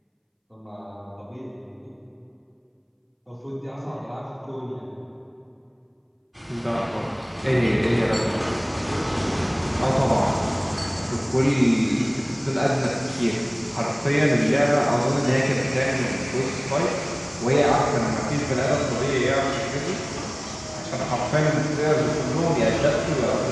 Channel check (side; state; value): both; identical; correlation 1.00